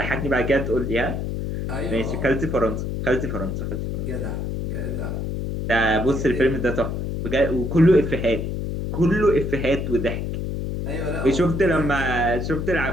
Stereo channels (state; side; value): noise; left; hum, 3 dB below the sound